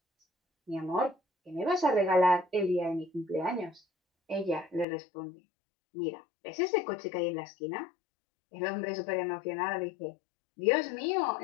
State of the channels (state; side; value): drops out; right; at 4.9 s